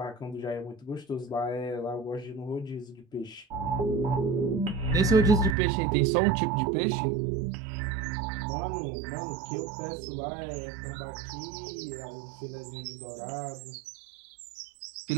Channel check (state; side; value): drops out; left; at 5.6 s